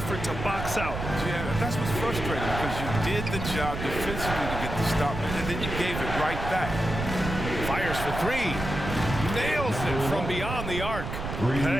to box out. Yeah, that's what's frustrating because you did the job defensively to get the stop, and then you gave it right back. Fires for 3. Nails it from beyond the arc.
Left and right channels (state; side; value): noise; right; rumble, 5 dB below the sound